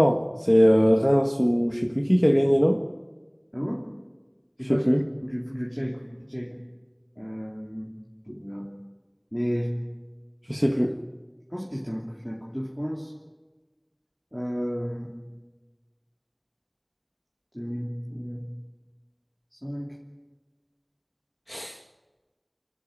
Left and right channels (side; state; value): both; identical; correlation 1.00